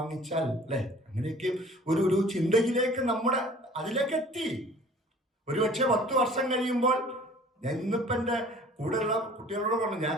അല്ലെ? അങ്ങനെയൊക്കെ ഒരു ചിന്തയിലേക്ക് അതിലേക്ക് എത്തി. ഒരുപക്ഷെ 10 വർഷം കഴിയുമ്പോൾ, ഞാൻ ഇന്നിപ്പോ എന്റെ കൂടെയുള്ള കുട്ടികളോട് പറഞ്ഞു, ഞാൻ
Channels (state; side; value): normal; both; correlation 0.49